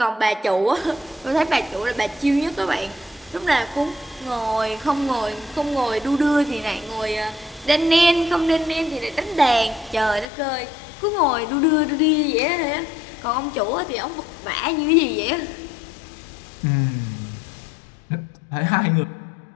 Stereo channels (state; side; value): drops out; right; at 10.2 s